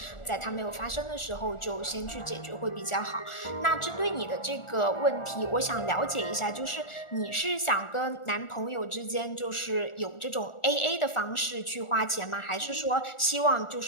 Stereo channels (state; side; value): late; right; 1.4 ms